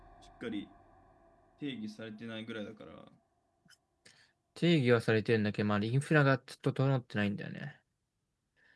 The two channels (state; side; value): identical; both; correlation 1.00